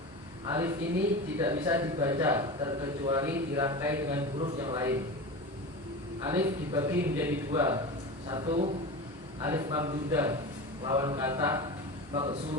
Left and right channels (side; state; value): both; normal; correlation 0.28